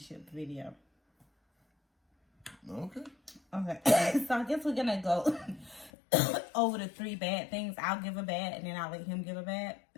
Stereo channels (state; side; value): drops out; right; at 5.9 s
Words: video. Okay. So I guess we're gonna go over the 3 bad things. I'll give a bad, and then I'll let him give a bad,